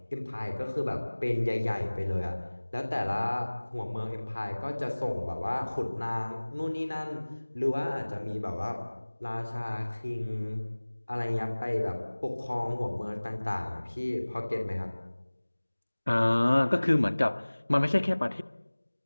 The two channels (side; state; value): both; inverted; correlation -1.00